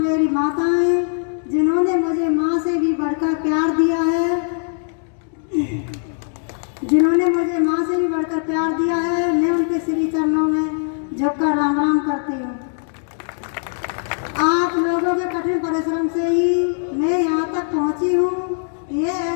माताएं, जिन्होंने मुझे माँ से भी बढ़कर प्यार दिया है, मैं उनके श्री चरणों में झुककर राम राम करती हूँ। आप लोगों के कठिन परिश्रम से ही मैं यहाँ तक पहुँची हूँ।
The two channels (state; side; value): silent; right; 65 dB below the other